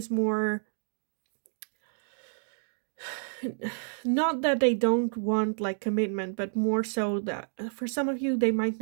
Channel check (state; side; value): silent; left; digital silence